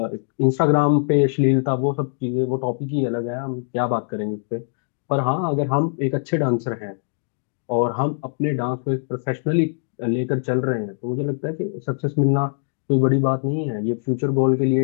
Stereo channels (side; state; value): right; silent; digital silence